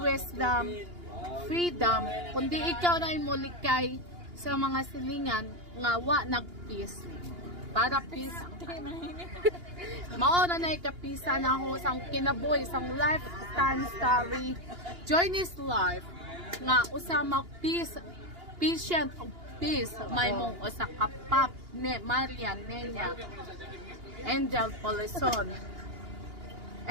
freedom. Kundi ikaw na imulikay sa mga silingan nga wa nag-peace. Para peace ang tanan. Mao na ikapisa na ako sang kinabuhi, sang lifetime story. Join this life nga usa mag-peace, patient of peace. May mong usa ka pap ne Marian Nenya, Angel Polison,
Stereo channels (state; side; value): late; left; 2.8 ms